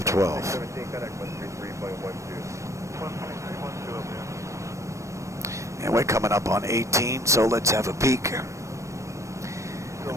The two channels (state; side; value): late; left; 0.15 ms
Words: 12. And we're coming up on 18, so let's have a peek. The